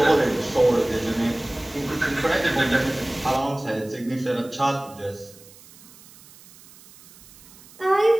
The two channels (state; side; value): noise; right; hiss, 23 dB below the sound